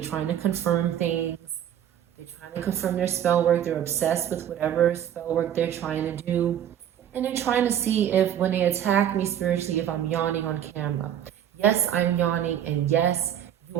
to confirm things. They're trying to confirm their spell work. They're obsessed with whatever spell work they're trying to do. And they're trying to see if when they attack me spiritually, if I'm yawning on camera. Yes, I'm yawning. And yes,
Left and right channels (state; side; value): quieter; left; 10.1 dB